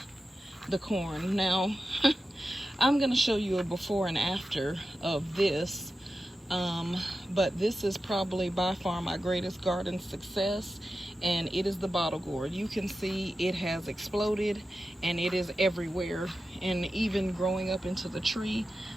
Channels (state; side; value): normal; both; correlation 0.92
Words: the corn. Now, I'm gonna show you a before and after of this, but this is probably by far my greatest garden success, and it is the bottle gourd. You can see it has exploded, and it is everywhere, and even growing up into the tree,